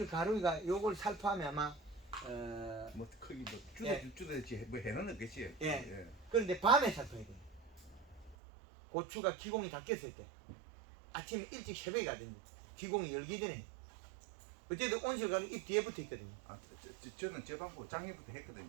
가루가 요걸 살포하면 아마 뭐 크기 뭐 예. 주도지 뭐 해는 없겠지. 예. 그런데 밤에 살포해야 돼요. 고추가 기공이 다 꼈을 때 아침 일찍 새벽에 가든지 기공이 열기 전에 어쨌든 온실 가루 입 뒤에 붙어 있거든요. 저는 저 방법 작년부터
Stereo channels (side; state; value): left; drops out; at 8.3 s